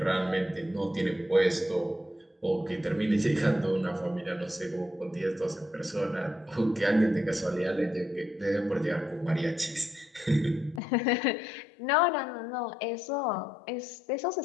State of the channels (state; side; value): drops out; right; at 10.8 s